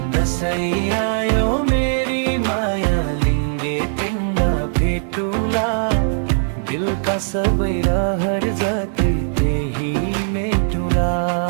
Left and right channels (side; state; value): left; silent; 57 dB below the other